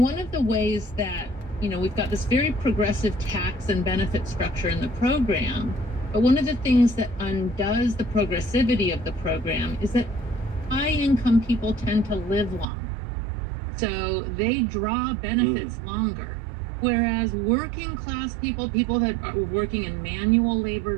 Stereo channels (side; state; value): left; drops out; at 12.7 s